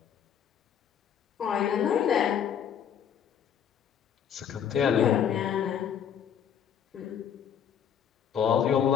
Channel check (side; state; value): right; quieter; 8.5 dB